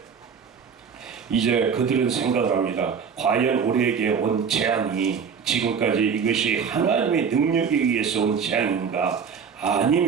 이제 그들은 생각을 합니다. 과연 우리에게 온 재앙이 지금까지 이것이 하나님의 능력에 의해서 온 재앙인가,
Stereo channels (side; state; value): left; quieter; 6.5 dB